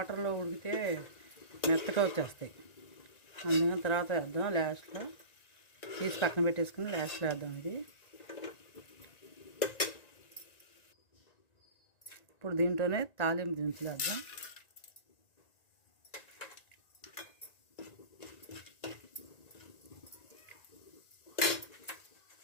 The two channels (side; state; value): right; late; 1.9 ms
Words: ఉడికితే మెత్తగా వచ్చేస్తాయి. అందుకని తర్వాత వేద్దాం. లాస్ట్లో తీసి పక్కన పెట్టేసుకుని లాస్ట్లో వేద్దాం. ఇది ఇప్పుడు దీంట్లోనే తాలింపు దినుసులు వేద్దాం.